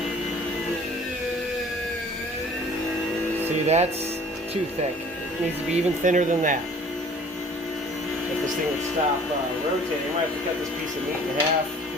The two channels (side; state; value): both; normal; correlation 0.50